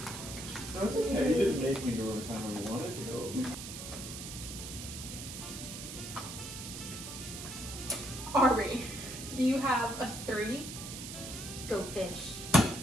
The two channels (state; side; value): noise; right; hiss, 9 dB below the sound